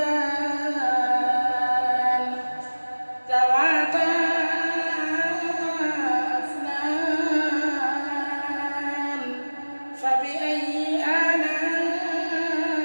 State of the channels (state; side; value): inverted; both; correlation -1.00